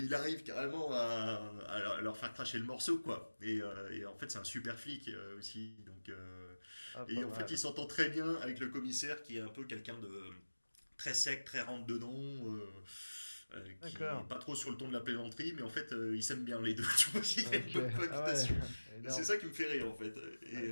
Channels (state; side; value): inverted; both; correlation -1.00